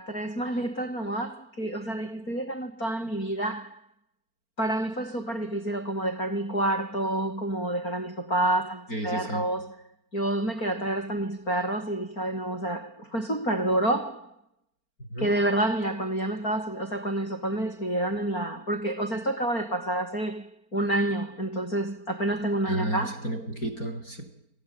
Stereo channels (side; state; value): right; late; 4.4 ms